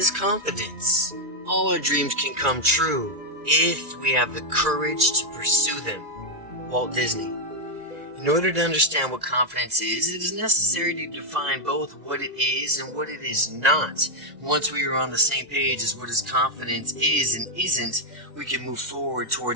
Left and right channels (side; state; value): left; late; 2.0 ms